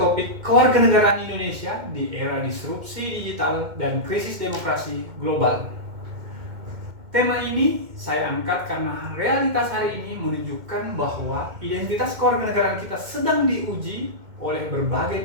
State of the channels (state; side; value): late; left; 2.1 ms